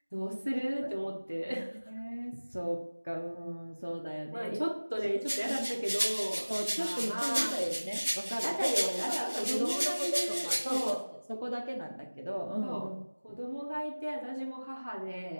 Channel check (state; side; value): inverted; both; correlation -1.00